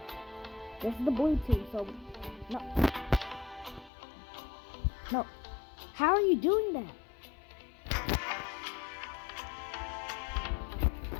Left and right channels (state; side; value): drops out; right; at 3.9 s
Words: This is the blue team, so no. How are you doing that?